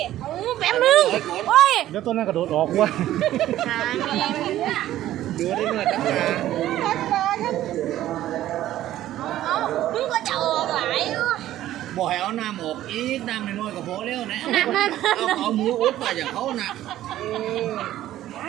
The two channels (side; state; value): left; quieter; 13.5 dB